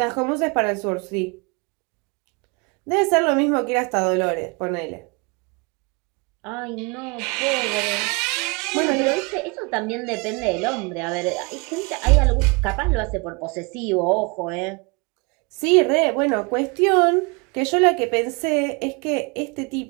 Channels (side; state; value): left; quieter; 29.9 dB